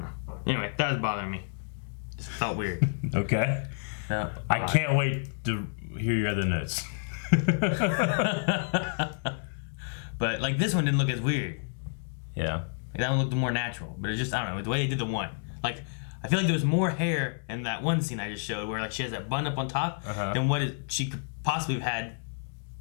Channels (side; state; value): right; silent; digital silence